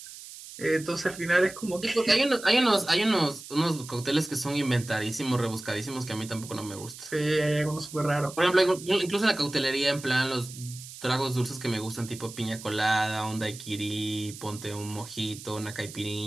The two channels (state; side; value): noise; right; hiss, 14 dB below the sound